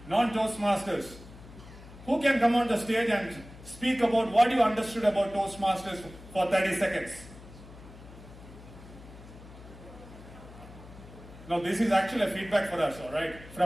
Non-Toastmasters. Who can come on the stage and speak about what you understood about Toastmasters for 30 seconds? Now this is actually a feedback for us, alright?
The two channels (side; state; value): left; noise; hum, 18 dB below the sound